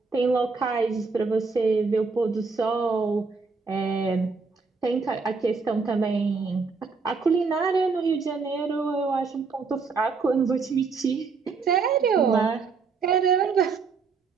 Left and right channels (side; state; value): left; quieter; 4.8 dB